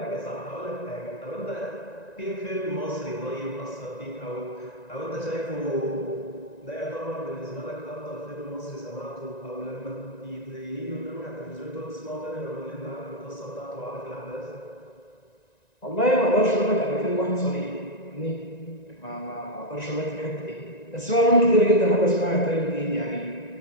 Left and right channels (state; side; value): late; right; 1.9 ms